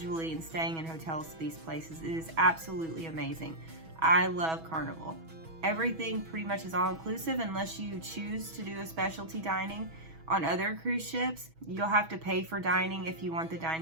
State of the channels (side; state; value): left; late; 6.2 ms